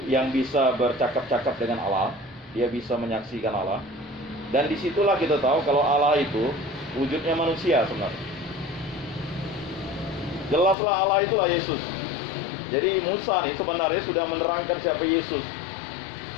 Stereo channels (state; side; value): drops out; right; at 10.8 s